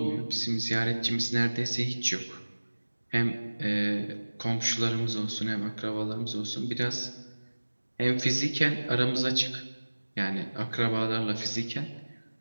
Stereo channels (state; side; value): inverted; both; correlation -1.00